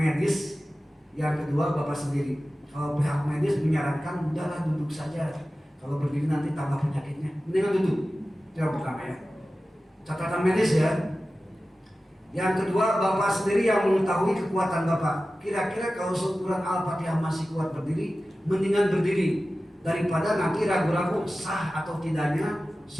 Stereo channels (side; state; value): both; normal; correlation 0.95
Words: Yang kedua, bapak sendiri. Kalau pihak medis menyarankan udahlah duduk saja, kalau berdiri nanti tambah penyakitnya, mendingan duduk. Itu yang pertama ya, catatan medis ya. Yang kedua, bapak sendiri yang mengetahui kekuatan bapak. Kira-kira kalau seukuran Al-Fatihah masih kuat berdiri, mendingan berdiri daripada nanti ragu-ragu sah atau tidaknya